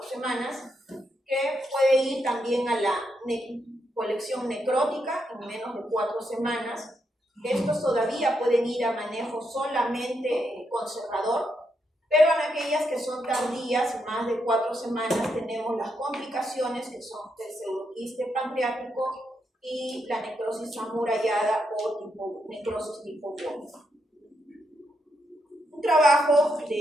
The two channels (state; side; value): normal; both; correlation 0.81